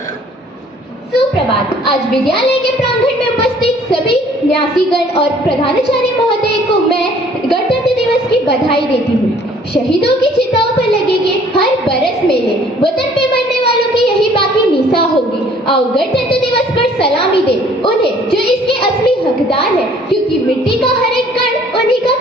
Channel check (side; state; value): both; normal; correlation 0.57